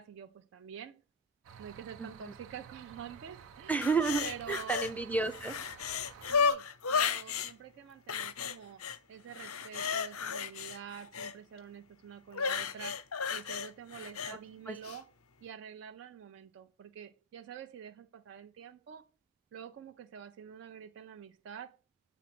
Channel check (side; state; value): both; normal; correlation 0.02